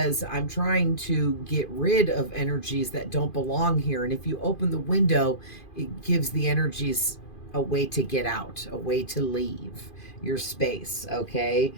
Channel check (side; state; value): right; late; 2.5 ms